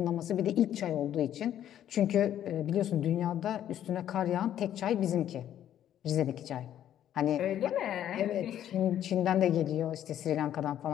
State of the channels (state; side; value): quieter; right; 11.0 dB